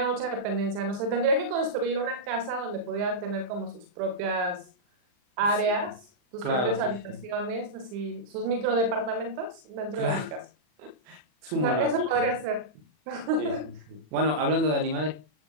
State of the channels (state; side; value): late; left; 40 ms